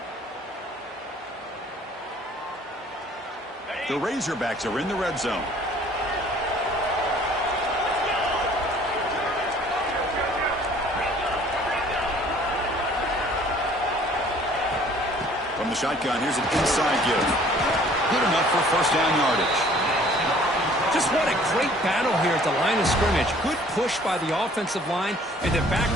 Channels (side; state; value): both; normal; correlation 0.55